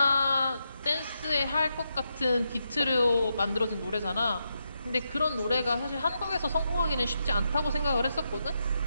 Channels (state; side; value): inverted; both; correlation -0.84